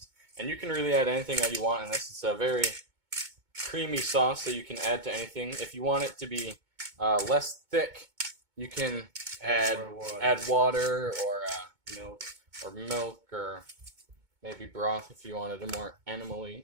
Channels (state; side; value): late; left; 2.2 ms